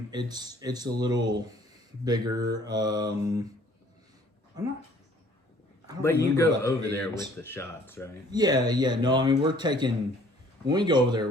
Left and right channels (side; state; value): both; normal; correlation 0.57